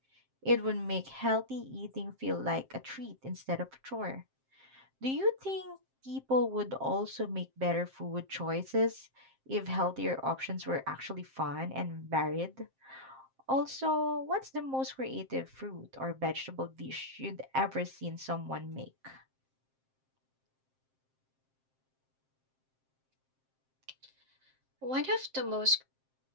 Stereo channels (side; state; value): left; late; 7.6 ms